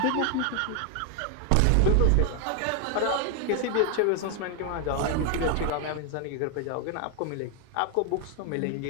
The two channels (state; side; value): different; both; correlation 0.01